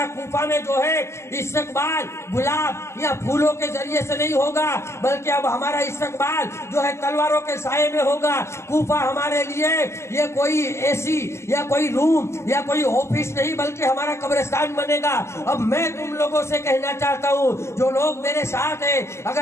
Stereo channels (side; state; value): right; late; 0.13 ms